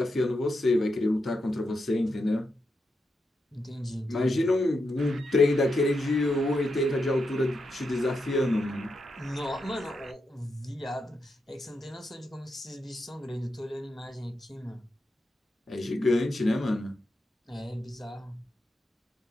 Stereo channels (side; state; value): both; normal; correlation 0.85